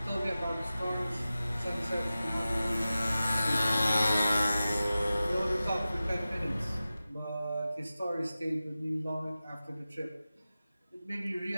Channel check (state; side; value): inverted; both; correlation -0.95